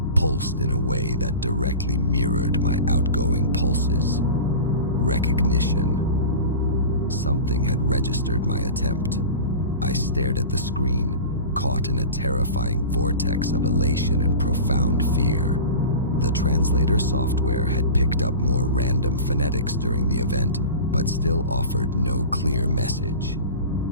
pulsed in a way that directly mirrored my outgoing pulses. Recognition. Something had registered my attempt. I stared at the screen, caught in a terrifying vortex of elation and profound fear. The translator software had picked up more random phonetics during the event, but still offered no clear message.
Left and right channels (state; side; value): inverted; both; correlation -0.33